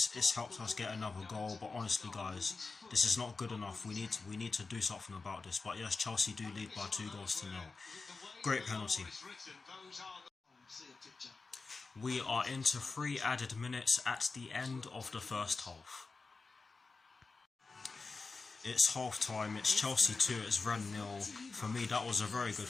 us get another goal, but honestly guys, this is not good enough. We need to do something about this. But yes, Chelsea do lead by 2-0. Great penalty. We are into 3 added minutes at the end of the first half. It's half time, it's Chelsea 2, it's Rennes 0. For me, that was a very good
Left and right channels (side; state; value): right; quieter; 4.1 dB